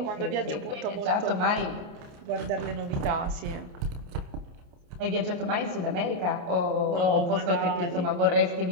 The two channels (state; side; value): late; left; 29 ms